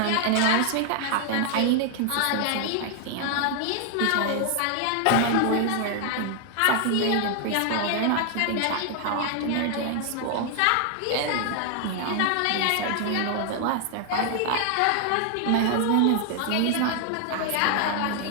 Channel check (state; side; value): different; both; correlation 0.00